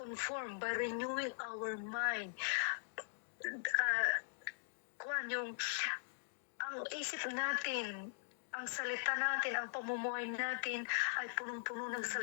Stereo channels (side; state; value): right; silent; digital silence